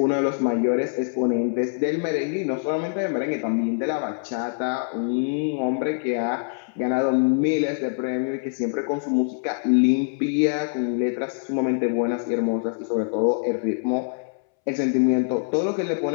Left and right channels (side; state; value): right; silent; 62 dB below the other